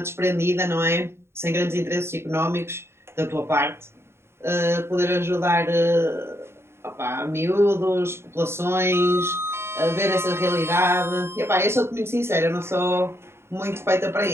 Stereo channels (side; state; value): left; late; 0.12 ms